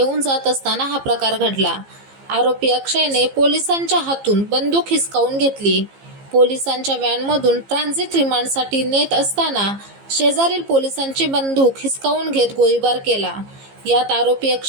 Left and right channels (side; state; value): left; late; 15 ms